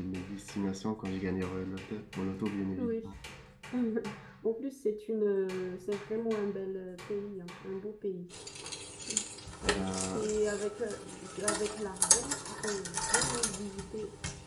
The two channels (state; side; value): identical; both; correlation 1.00